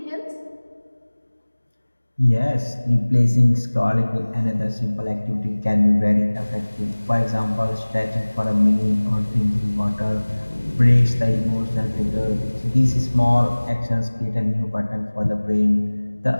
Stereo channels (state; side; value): inverted; both; correlation -1.00